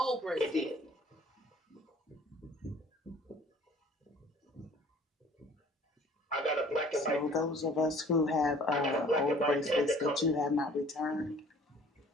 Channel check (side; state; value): both; normal; correlation 0.53